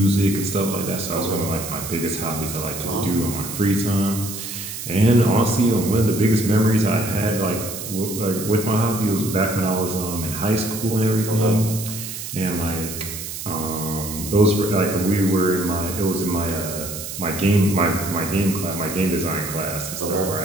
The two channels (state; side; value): noise; right; hiss, 8 dB below the sound